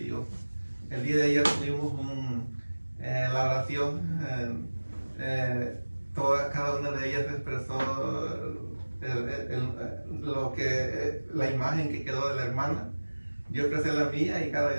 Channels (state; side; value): inverted; both; correlation -1.00